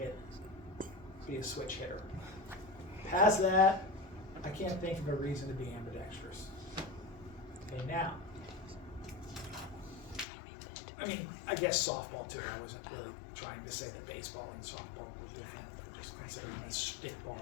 be a switch hitter. Past that, I can't think of a reason to be ambidextrous. Okay, now, I mean, I guess softball too. I wasn't really trying to say that baseball and softball were different. I'm just considering a stickball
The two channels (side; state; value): right; drops out; at 10.2 s